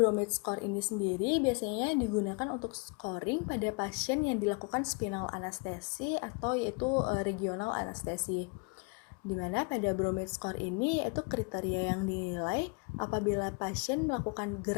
score ini sendiri biasanya digunakan untuk scoring pada pasien yang dilakukan spinal anestesi atau yaitu regional anestesi. Di mana pada Bromide score ini yaitu kriteria yang dinilai apabila pasien melakukan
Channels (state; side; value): quieter; right; 32.4 dB